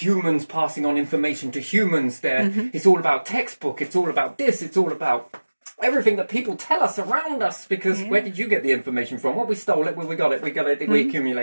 passing on information to humans. It's all about textbook. It's all about this. It's all about everything that people tell us around us. Because where did you get the information from? Well, we stole it. We got it. We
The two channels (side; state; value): both; inverted; correlation -1.00